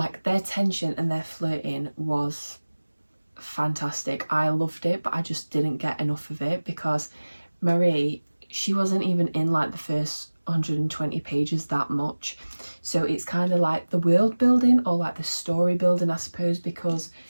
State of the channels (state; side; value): inverted; both; correlation -1.00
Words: their tension and their flirting was fantastic. I loved it, but I just didn't get enough of it because Marie, she wasn't even in like the first 120 pages that much. So it's kind of like the world building, or like the story building, I suppose, because